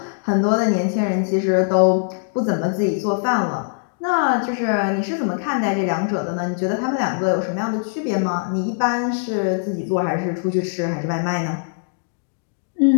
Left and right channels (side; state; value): right; silent; digital silence